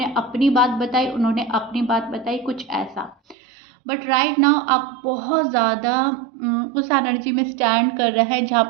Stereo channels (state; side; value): drops out; left; at 3.4 s